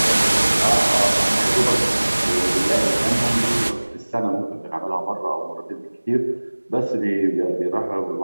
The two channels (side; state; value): both; inverted; correlation -1.00